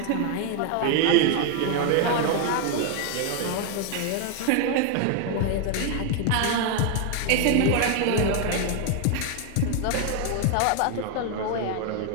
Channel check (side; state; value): both; different; correlation 0.00